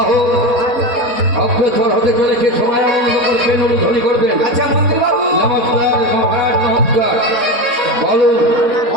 অগ্রসর হতে চলেছে। সবাই আনন্দ করবেন, অনুধ্বনি করবেন। আচ্ছা মন্ত্রী বাবু। নমস্কার মহারাজ, নমস্কার। বলুন।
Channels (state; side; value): late; left; 3.7 ms